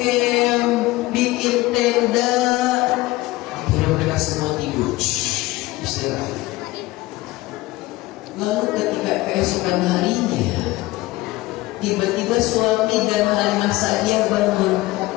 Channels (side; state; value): right; quieter; 19.1 dB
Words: bikin tenda. Akhirnya mereka semua tidur, istirahat. Lalu ketika keesokan harinya, tiba-tiba suami dan Halimah Sa'diyah bangun.